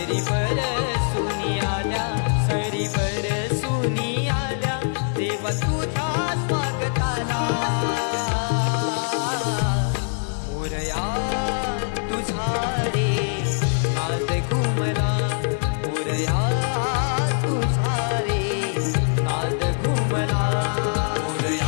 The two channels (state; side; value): silent; right; digital silence